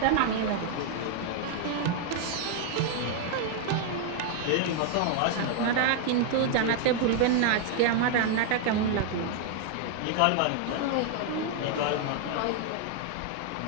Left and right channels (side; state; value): both; different; correlation 0.00